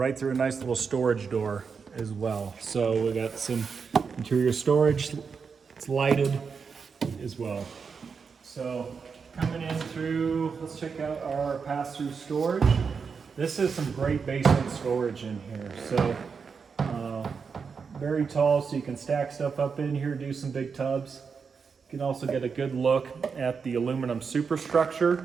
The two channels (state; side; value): quieter; left; 5.7 dB